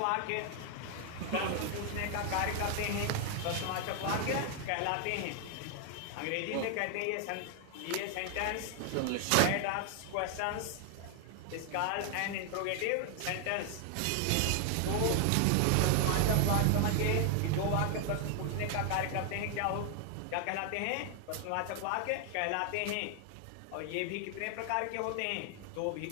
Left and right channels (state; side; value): different; both; correlation 0.00